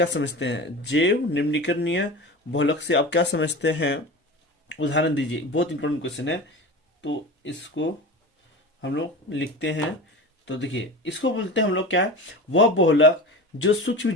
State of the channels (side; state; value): both; normal; correlation 0.31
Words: समझते हैं। जैव निम्नीकरणीय बहुलक से आप क्या समझते हैं, उदाहरण दीजिए। बहुत इंपॉर्टेंट क्वेश्चन है, तो इसको हम लोग लिखते हैं। तो देखिए, इसको बोलते हैं हम लोग क्या है, वह बहुलक जो सूक्ष्म